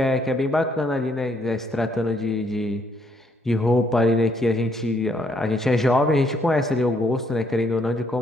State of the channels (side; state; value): both; normal; correlation 0.70